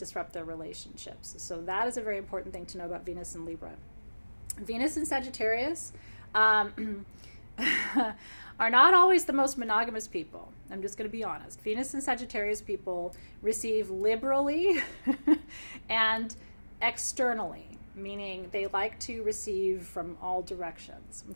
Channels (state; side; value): inverted; both; correlation -1.00